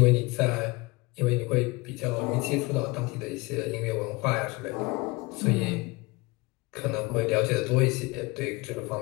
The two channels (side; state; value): right; quieter; 24.2 dB